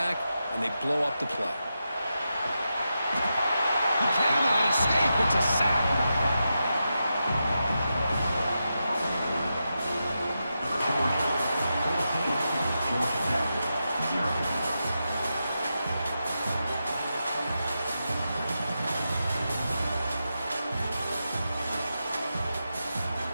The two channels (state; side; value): inverted; both; correlation -0.88